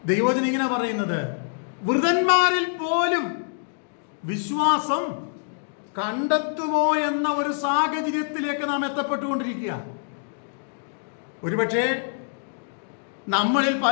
ദൈവവചനം ഇങ്ങനെ പറയുന്നത്, വൃതന്മാരിൽ പോലും വിശ്വാസം കണ്ടെത്തുമോ എന്ന ഒരു സാഹചര്യത്തിലേക്ക് നാം എത്തപ്പെട്ടുകൊണ്ടിരിക്കുക. ഒരുപക്ഷെ നമ്മളിൽ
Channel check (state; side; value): silent; right; 62 dB below the other